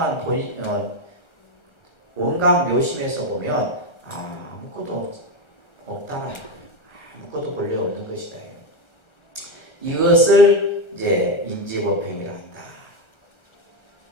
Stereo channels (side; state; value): right; late; 1.3 ms